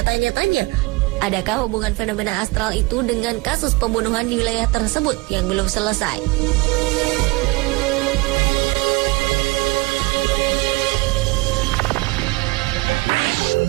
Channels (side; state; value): left; quieter; 23.6 dB